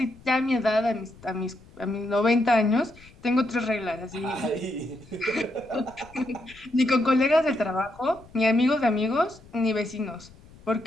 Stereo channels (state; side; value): noise; left; rumble, 23 dB below the sound